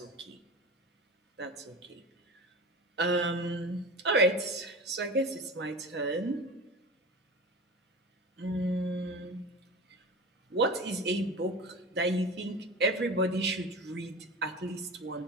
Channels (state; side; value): normal; both; correlation 0.31